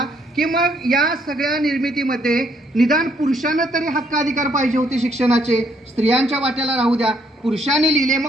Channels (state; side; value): normal; both; correlation 0.70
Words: की मग या सगळ्या निर्मितीमध्ये निदान पुरुषांना तरी हक्क अधिकार पाहिजे होते शिक्षणाचे. स्त्रियांच्या वाट्याला राहू द्या, पुरुषांनी लिहिले,